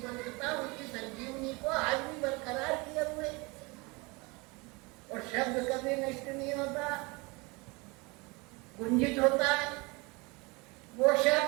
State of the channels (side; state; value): left; quieter; 26.6 dB